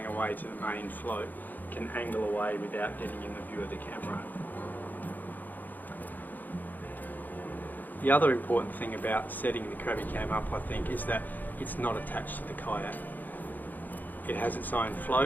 away to the main float can angle away without getting in the view of the camera. The other important thing about setting the Crabby Cam up, I think, is that it's not attached to the kayak. It has its own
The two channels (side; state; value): right; late; 0.085 ms